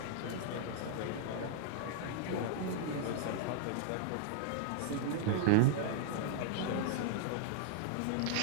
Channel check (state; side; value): different; both; correlation -0.01